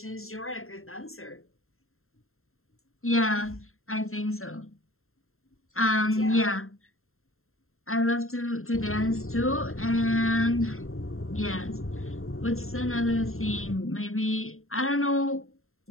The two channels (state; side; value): late; right; 0.61 ms